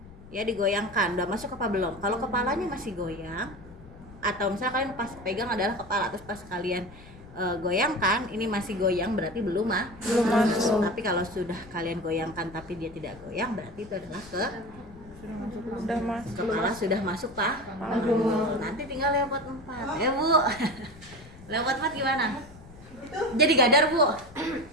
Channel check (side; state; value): left; noise; rumble, 20 dB below the sound